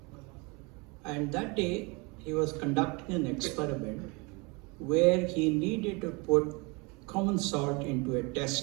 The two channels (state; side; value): quieter; left; 28.5 dB